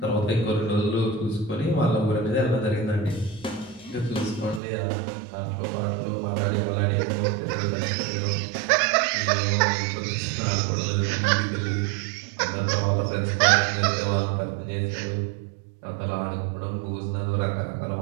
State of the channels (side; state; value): left; drops out; at 4.6 s